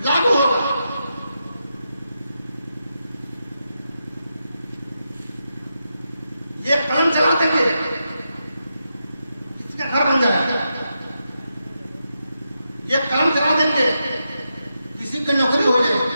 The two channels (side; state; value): both; inverted; correlation -0.86